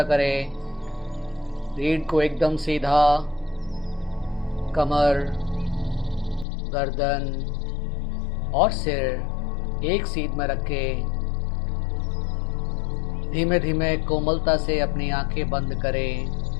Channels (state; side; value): drops out; right; at 6.5 s